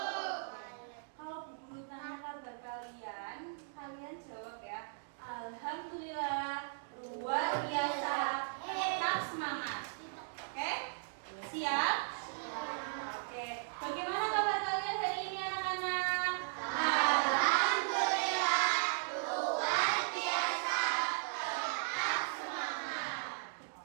Kalau Bu Guru tanya kabar kalian, kalian jawab ya. Alhamdulillah, luar biasa, tetap semangat. Oke? Siap? Oke. Bagaimana kabar kalian hari ini anak-anak? Alhamdulillah, luar biasa, tetap semangat.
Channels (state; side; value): silent; left; digital silence